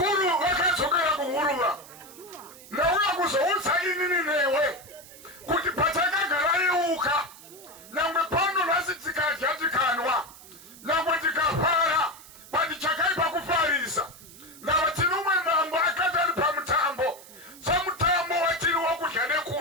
vakadzokera kuhuruva nauya kuzoutsa inini newe kuti patakagara yeuka nangwe pano nhasi tikadya tikanwa nangwe tikafara patichakaipa kufarisa ndava tinomwe mambo akati ari pamutambo samutambo watiri wokudya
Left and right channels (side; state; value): right; noise; hiss, 19 dB below the sound